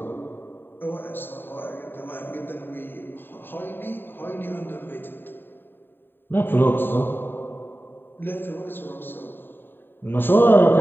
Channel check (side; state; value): right; late; 0.096 ms